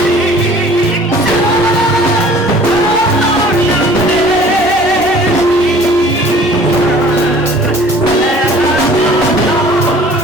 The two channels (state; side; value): normal; both; correlation 0.50